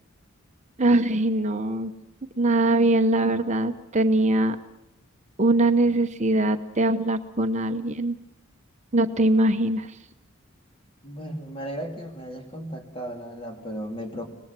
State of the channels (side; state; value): both; normal; correlation 0.50